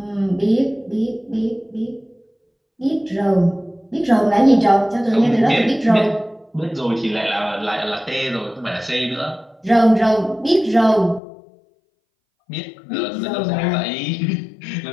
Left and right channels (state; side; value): drops out; right; at 11.2 s